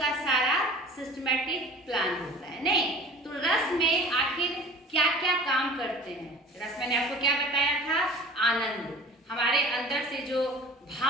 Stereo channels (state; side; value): normal; both; correlation 0.43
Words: सारा सिस्टमैटिक प्लान होता है। नहीं तो रस में आखिर क्या क्या काम करते हैं? रस मैंने आपको क्या बताया था? आनंद। हमारे अंदर से जो